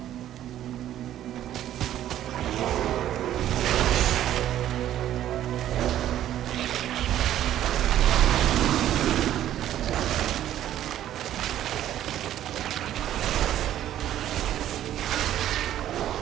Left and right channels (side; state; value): left; quieter; 12.0 dB